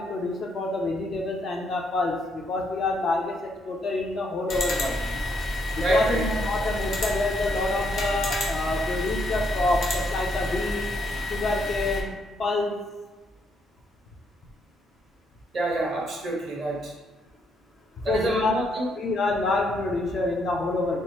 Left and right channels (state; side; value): normal; both; correlation 0.74